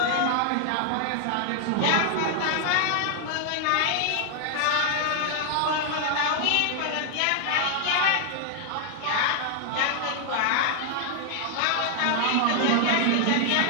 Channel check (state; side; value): different; both; correlation 0.00